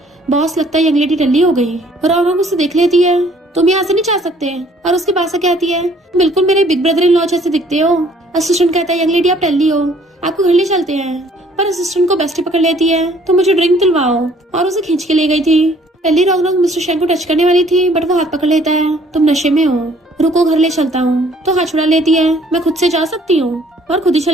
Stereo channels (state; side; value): normal; both; correlation 0.59